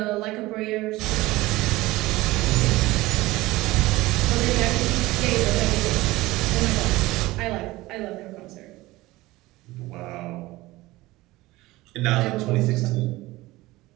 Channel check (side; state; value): left; quieter; 19.2 dB